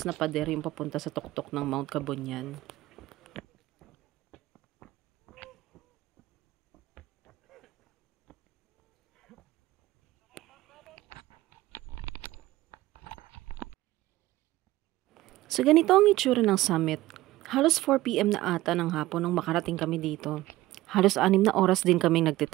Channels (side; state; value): left; quieter; 17.0 dB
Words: na pader yung papunta sa tuktok ng Mount Kabunyan. So ganito ang itsura ng summit. Halos 4 PM na ata ng hapon nung makarating kami dito. Halos 6 na oras din kaming